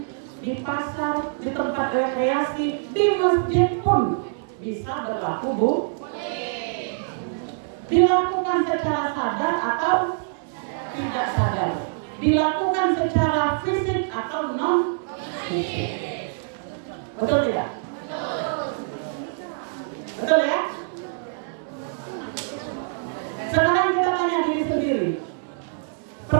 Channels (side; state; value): left; silent; 62 dB below the other